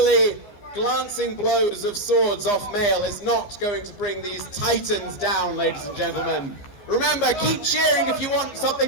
glancing blows of swords off mail is not going to bring these titans down, ladies and gentlemen. Remember, keep cheering if you want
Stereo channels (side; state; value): right; late; 15 ms